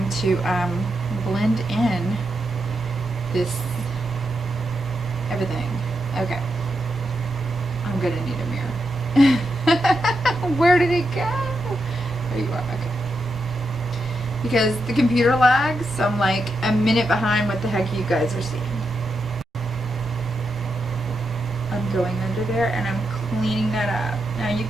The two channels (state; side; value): normal; both; correlation 0.85